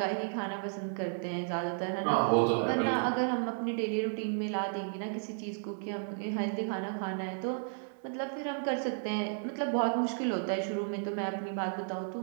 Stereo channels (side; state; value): left; silent; digital silence